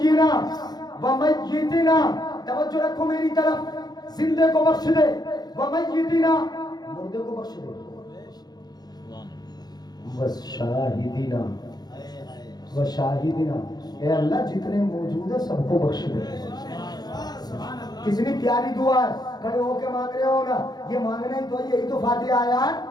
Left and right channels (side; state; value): right; late; 0.19 ms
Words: ومیتنا، توجہ رکھو میری طرف، زندے کو بخش دے، ومیتنا، مردے کو بخش دے، وشاہدنا، وشاہدنا، اے اللہ جتنے موجود ہیں سب کو بخش دے. کتنی پیاری دعا ہے، کھڑے ہو کے مانگ رہے ہو نا، یہ مانگنا ہی تو یہی تو فاتحہ آیا ہے.